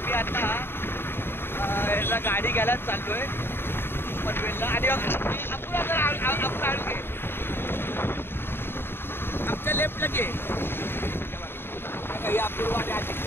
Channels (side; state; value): right; late; 0.11 ms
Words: मी आता याला गाडी घ्यायला चाललोय पनवेलला. आणि आपण आणू घे आमच्या लेफ्टला घे अपूर्व आणि